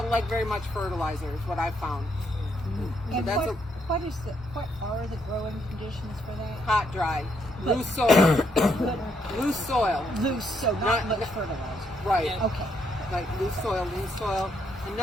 like very much fertilizer, is what I've found. And what are the growing conditions for that? Hot, dry, loose soil. Loose soil. Loose, so not much fertilizer. Right. Okay. Like loose soil.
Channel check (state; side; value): normal; both; correlation 0.75